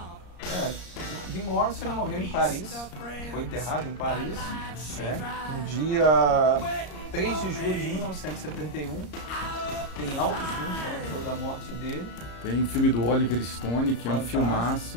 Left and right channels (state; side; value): late; right; 34 ms